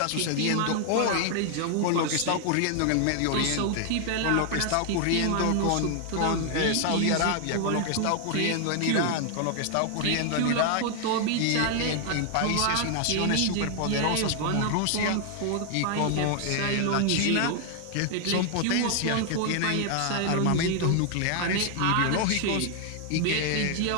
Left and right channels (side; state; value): both; different; correlation 0.00